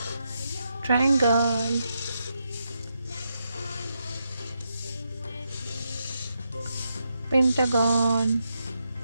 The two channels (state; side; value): inverted; both; correlation -0.83